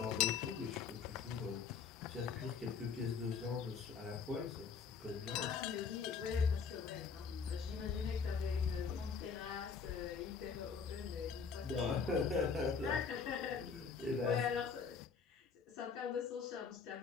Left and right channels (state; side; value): quieter; right; 5.9 dB